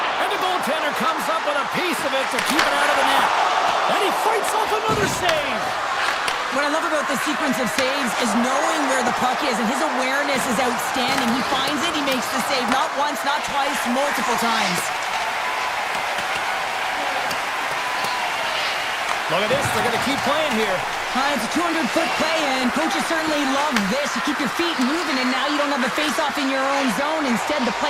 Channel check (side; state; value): both; identical; correlation 1.00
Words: And the goaltender comes up with a piece of it to keep it out of the net. And he fights off another save. What I love about this sequence of saves is knowing where the puck is, and his awareness is outstanding. He finds it, he makes the save, not once, not twice, multiple times. Look at this, they're going to keep playing here. It's a 200-foot play, and coaches certainly love this. You keep your feet moving, and now you don't have a face-off in your own zone. Instead, the